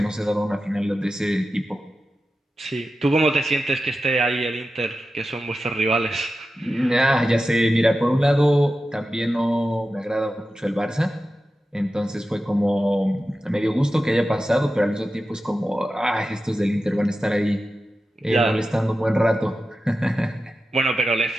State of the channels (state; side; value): normal; both; correlation 0.92